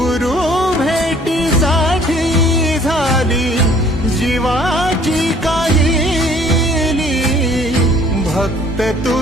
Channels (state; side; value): normal; both; correlation 0.57